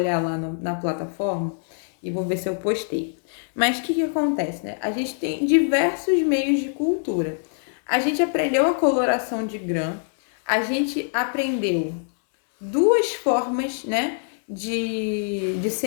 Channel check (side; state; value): right; silent; 63 dB below the other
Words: lá na plataforma e vou ver se eu postei. Mas o que acontece, né? A gente tem diversos meios de cultura. A gente aprendeu a coloração de grã, a gente aprendeu duas formas, né, de